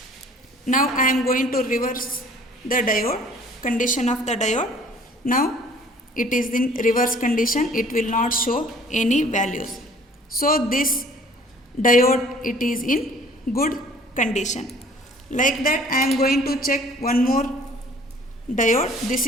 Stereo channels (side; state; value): both; normal; correlation 0.53